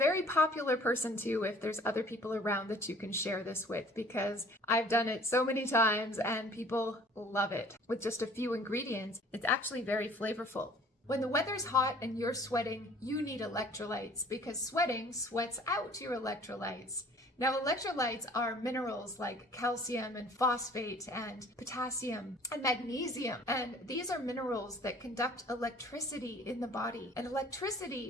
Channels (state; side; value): normal; both; correlation 0.52